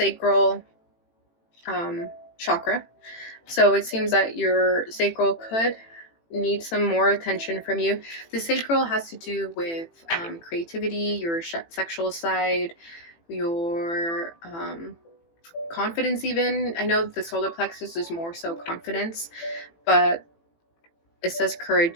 chakra, so it seems that your sacral could need some more attention from you. The sacral has to do with creativity, your sexual side, your confidence even. I know the solar plexus is more so confidence, but it says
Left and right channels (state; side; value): late; right; 18 ms